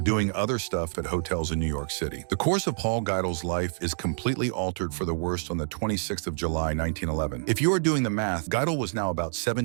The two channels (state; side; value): silent; left; digital silence